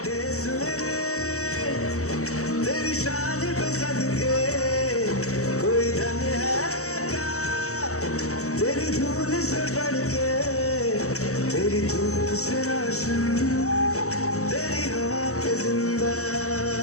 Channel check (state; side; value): late; right; 0.65 ms